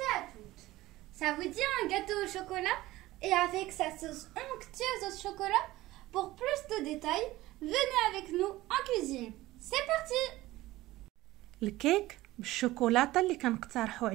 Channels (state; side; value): quieter; left; 17.5 dB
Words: et à toutes. Ça vous dit un gâteau au chocolat et avec sa sauce onctueuse au chocolat? Pour plus de détails, venez avec nous en cuisine. C'est parti. الكيك بالشوكولاتة اللي كنقترحه